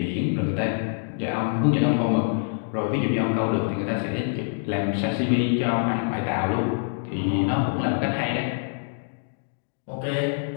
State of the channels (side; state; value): right; silent; digital silence